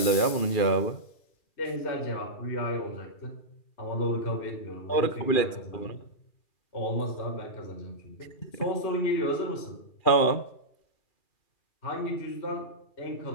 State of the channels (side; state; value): right; late; 2.4 ms